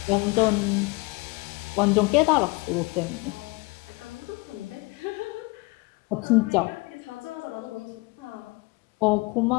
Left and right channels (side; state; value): right; quieter; 25.5 dB